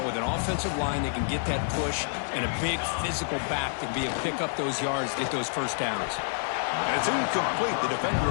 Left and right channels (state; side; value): silent; right; digital silence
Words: with an offensive line that can get that push and a big physical back to be able to pick up those yards, get those first downs. And it's incomplete. The defender